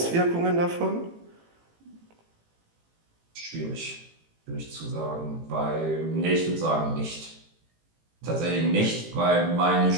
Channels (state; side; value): late; left; 18 ms